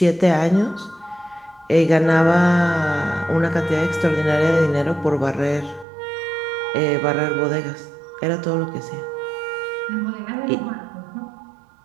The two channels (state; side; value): drops out; left; at 5.9 s